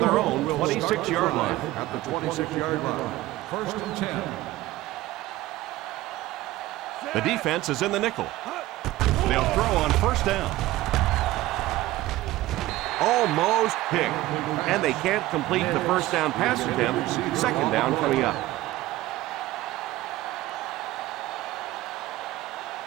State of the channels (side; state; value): left; quieter; 16.9 dB